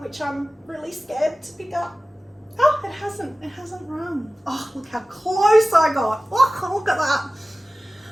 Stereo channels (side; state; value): both; normal; correlation 0.97